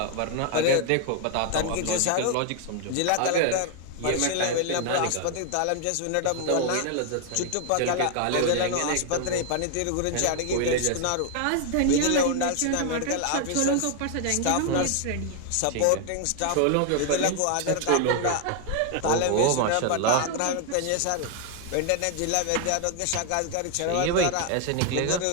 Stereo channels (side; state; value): both; different; correlation 0.01